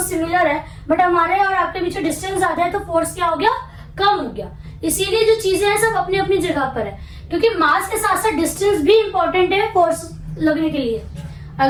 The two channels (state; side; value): identical; both; correlation 1.00